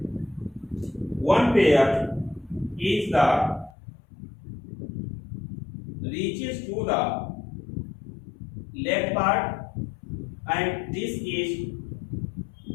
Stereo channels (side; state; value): right; drops out; at 3.7 s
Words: one pair is the reaches to the leg part, and this is